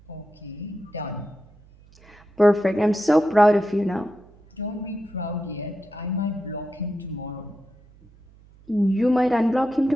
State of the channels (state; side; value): noise; right; hum, 26 dB below the sound